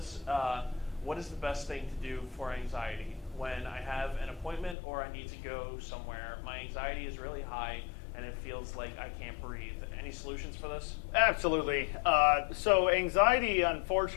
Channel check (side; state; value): right; drops out; at 4.8 s